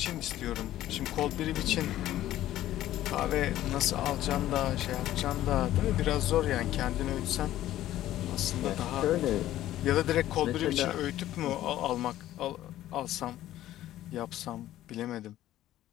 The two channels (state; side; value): quieter; right; 13.7 dB